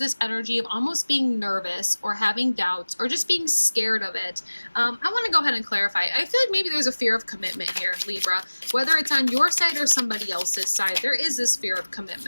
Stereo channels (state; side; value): inverted; both; correlation -1.00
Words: energy of almost being nervous or having doubts or just being scared of it. I want to go ahead and clarify. I feel like maybe there's a fear of commitment here, Libra. Whether it's on your side or somebody else's side, there is this fear of